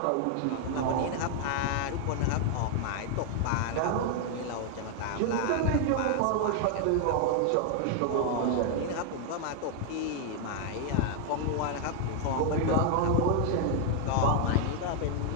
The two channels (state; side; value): different; both; correlation 0.00